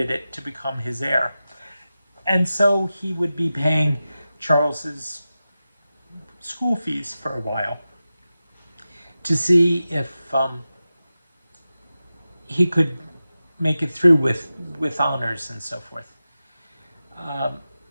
to become his heir. And so he would be paying Charles's school fees for a while to see if he could make it through with honors and so forth. Um,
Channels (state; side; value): inverted; both; correlation -0.93